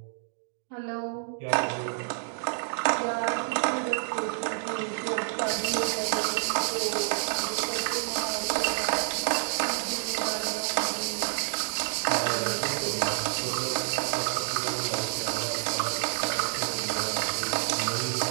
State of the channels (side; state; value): left; silent; digital silence